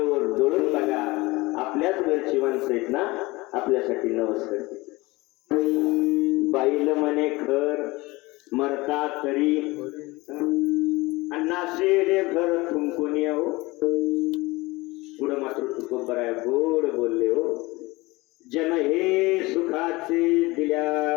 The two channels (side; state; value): right; quieter; 21.9 dB